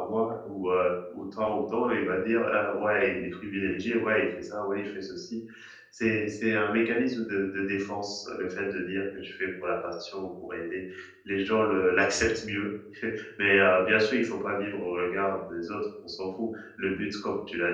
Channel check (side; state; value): both; identical; correlation 1.00